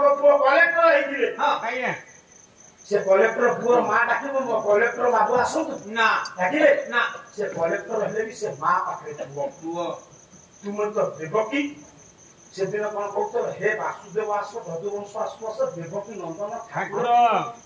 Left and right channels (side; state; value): both; identical; correlation 1.00